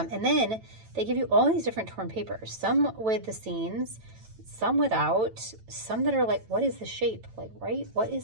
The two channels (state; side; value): late; left; 9.0 ms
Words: then they give you all these different torn papers, some with the scenes, some without, some that are like, what is the shape? Like, right? What